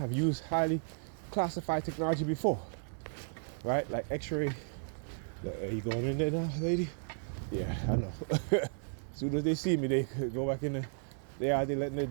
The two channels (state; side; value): silent; left; digital silence